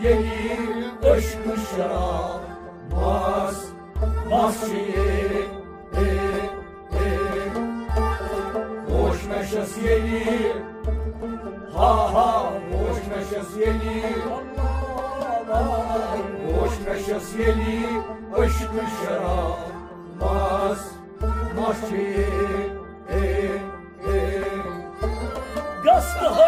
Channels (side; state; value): both; identical; correlation 1.00